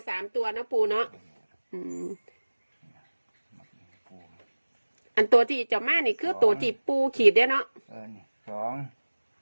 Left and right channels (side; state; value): both; inverted; correlation -1.00